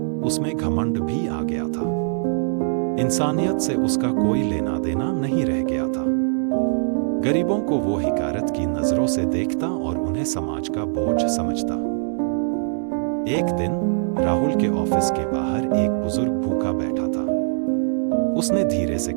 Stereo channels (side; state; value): left; silent; 64 dB below the other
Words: उसमें घमंड भी आ गया था। इंसानियत से उसका कोई लेना देना नहीं रह गया था। गरीबों को वो हिकारत की नजरों से देखता और उन्हें समाज का बोझ समझता। एक दिन राहुल के ऑफिस के बाहर एक बुजुर्ग भूखा बैठा था। उसने धीरे से